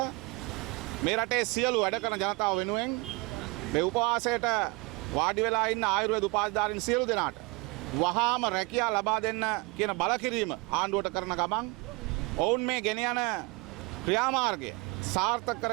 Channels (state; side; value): quieter; left; 25.6 dB